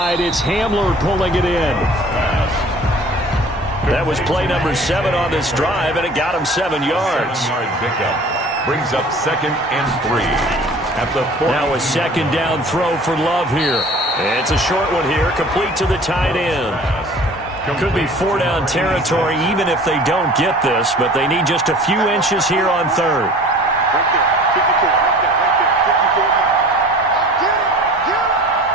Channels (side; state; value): both; normal; correlation 0.45